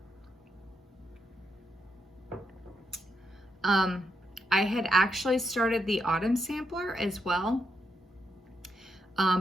I had actually started the autumn sampler as well,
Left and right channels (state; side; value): normal; both; correlation 0.80